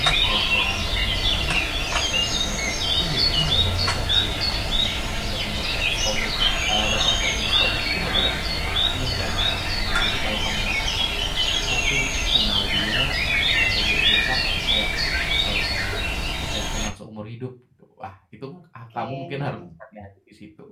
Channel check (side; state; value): both; identical; correlation 1.00